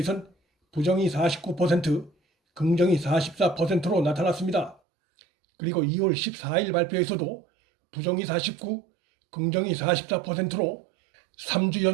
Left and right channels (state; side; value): drops out; left; at 4.8 s